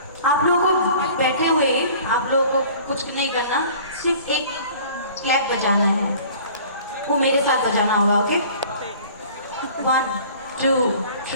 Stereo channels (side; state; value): both; inverted; correlation -0.47